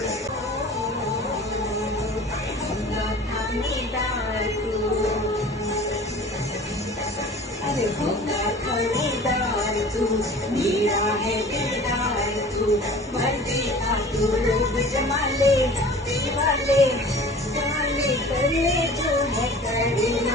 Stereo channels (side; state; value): both; normal; correlation 0.43